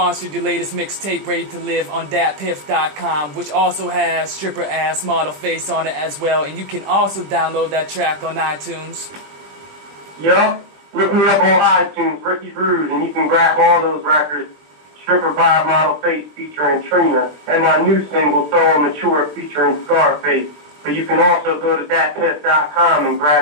your latest mixtape, Ready to Live, on datpiff.com, which also has Stripper Ass Model Face on it as well, and you can also download that track on iTunes. Yup, look me up on iTunes, Ricky Rude, and you can grab all those records, Stripper Bod Model Face featuring Trina, and my new single, So Mature, featuring Scarface. But you can also go to datpiff.com and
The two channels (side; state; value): left; late; 20 ms